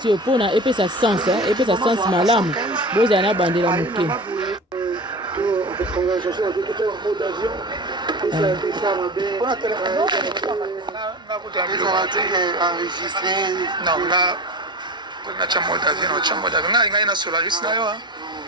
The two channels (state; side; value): normal; both; correlation 0.31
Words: oyo mpona epesa sens epesa sens malamu bozala na bandela moke natya mode avion ngai na solaris na yo